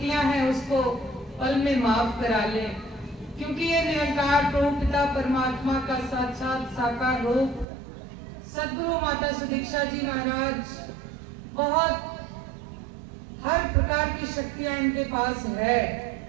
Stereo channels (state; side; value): drops out; left; at 7.7 s